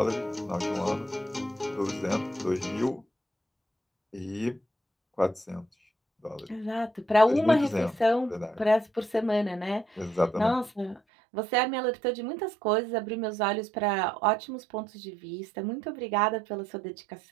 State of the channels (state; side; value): drops out; left; at 11.0 s